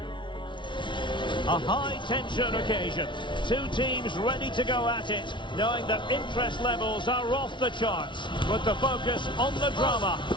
A high-tension occasion. Two teams ready to go at it, knowing that interest levels are off the charts, with the focus on the drama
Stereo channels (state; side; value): late; right; 0.24 ms